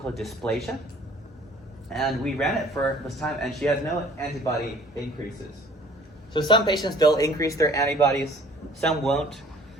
dysplasia. And we ran it for this time, and she has no antibody increases. So some patients, they'll increase their antibodies, some won't.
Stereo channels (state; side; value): normal; both; correlation 0.53